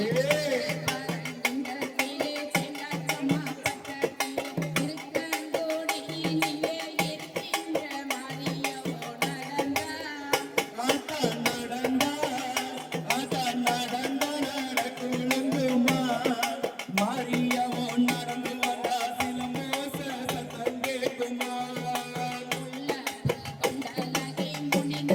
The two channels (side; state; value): both; identical; correlation 1.00